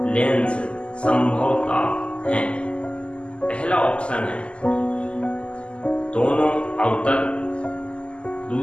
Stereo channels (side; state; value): right; late; 0.054 ms